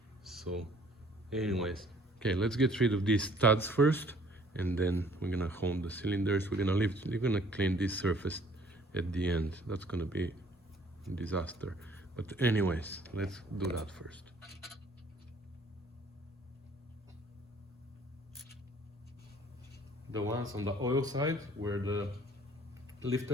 So anyways, okay, let's get rid of these studs first, and then we're gonna hone the cylinders. We're gonna clean this surface at the end. That's gonna be a disaster. But anyways, let's do that first. The ones on the oil side, where the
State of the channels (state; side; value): normal; both; correlation 0.57